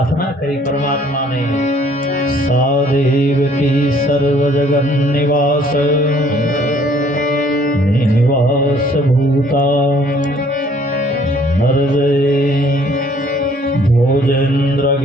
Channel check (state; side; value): normal; both; correlation 0.60